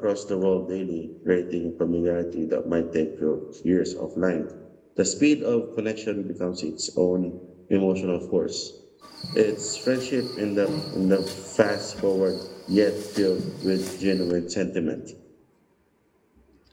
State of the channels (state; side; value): identical; both; correlation 1.00